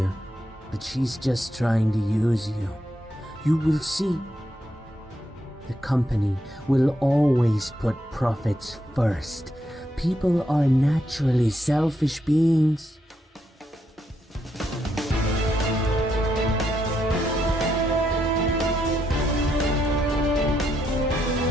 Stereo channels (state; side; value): normal; both; correlation 0.79